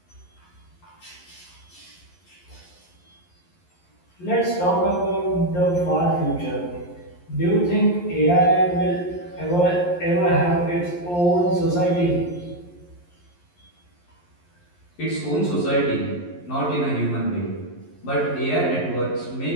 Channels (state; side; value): late; right; 11 ms